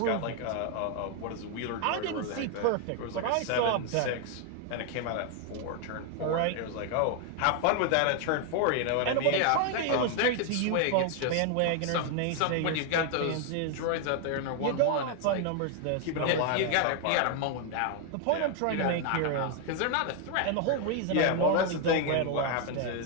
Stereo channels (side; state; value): both; different; correlation 0.00